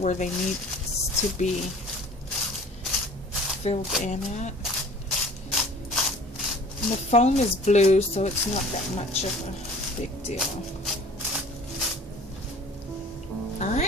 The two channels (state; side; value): normal; both; correlation 0.47